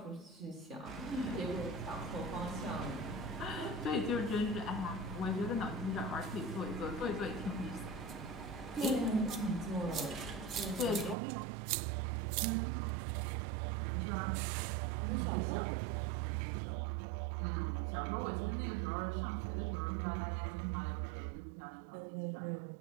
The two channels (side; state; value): left; drops out; at 11.2 s